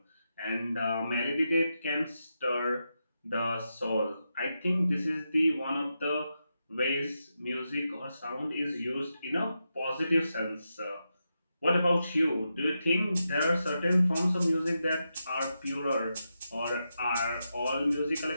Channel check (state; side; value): inverted; both; correlation -0.87